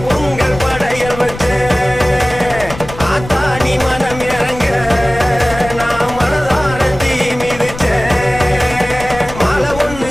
படையல் வச்சேன். ஆத்தா நீ மனம் இறங்க நான் மனதார தீ மிதிச்சேன். மாலை ஒண்ணு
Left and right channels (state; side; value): noise; left; rumble, 13 dB below the sound